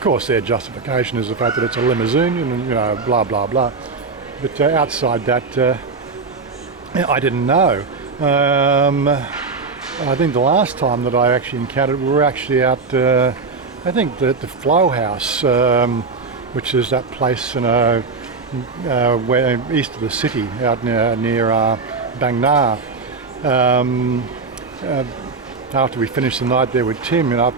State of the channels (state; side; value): quieter; left; 4.4 dB